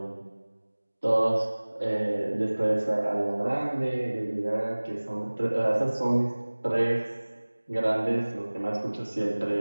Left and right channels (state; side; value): inverted; both; correlation -1.00